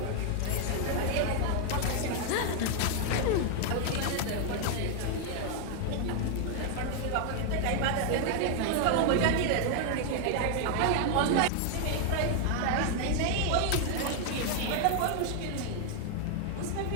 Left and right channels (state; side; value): different; both; correlation 0.00